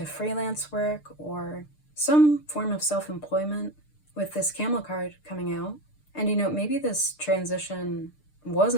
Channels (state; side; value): late; right; 6.7 ms